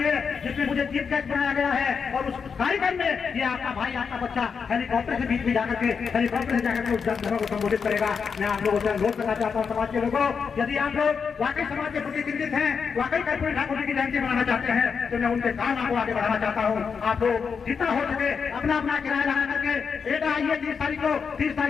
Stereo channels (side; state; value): right; quieter; 6.0 dB